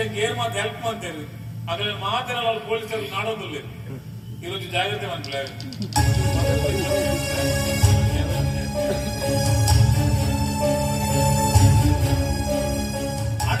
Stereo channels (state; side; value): identical; both; correlation 1.00